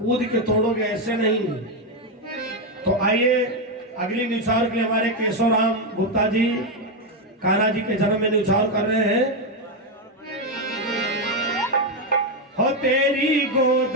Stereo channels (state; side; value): normal; both; correlation 0.06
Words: के तोड़ोगे, ऐसे नहीं। तो आइए अगली निछावर के लिए हमारे केशव राम गुप्ता जी कान्हा जी के जन्म में निछावर कर रहे हैं। हो तेरी गोद